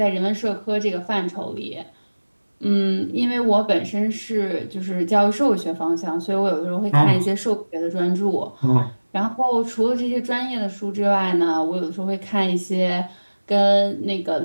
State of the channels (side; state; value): both; inverted; correlation -1.00